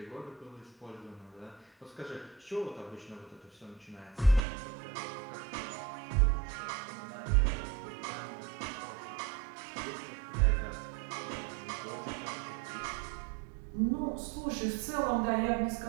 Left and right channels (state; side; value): drops out; left; at 4.4 s